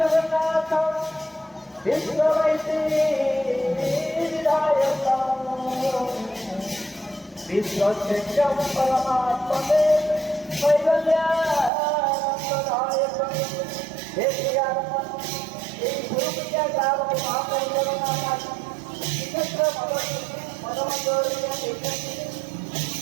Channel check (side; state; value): left; drops out; at 11.7 s